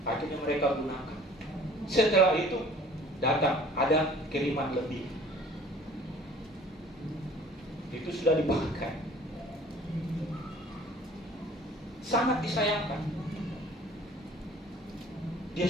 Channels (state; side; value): normal; both; correlation 0.51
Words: Akhirnya mereka gunakan. Setelah itu datang, ada kiriman lebih. Itu sudah dipakai. Sangat disayangkan. Dia